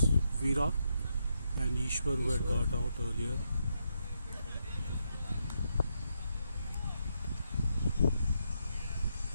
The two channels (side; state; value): both; inverted; correlation -0.80